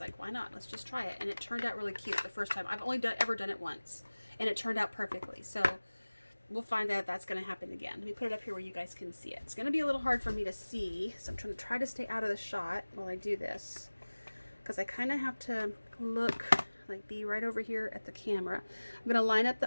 why not? Let's just try it. And it turned out really cute the first time. I've only ever done it once, and it turned out perfectly. So we'll find out if that's going to happen again. Let me put it up here where you guys can see it. It's going to be a little hard for me to see, so I'm trying to stay out of the shot while I do this, because I kind of have to look, like be right over here at the camera. I'm going to line up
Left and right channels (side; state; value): both; inverted; correlation -1.00